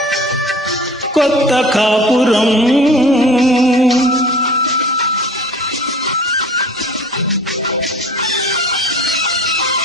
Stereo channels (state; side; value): normal; both; correlation 0.44